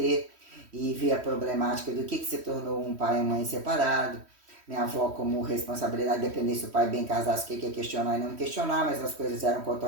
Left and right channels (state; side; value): late; left; 3.1 ms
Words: e ver a problemática do que se tornou um pai e uma mãe separado. Minha avó, como responsabilidade, dependesse se o pai bem casasse, o que é questionar e não questionar, mas as coisas eram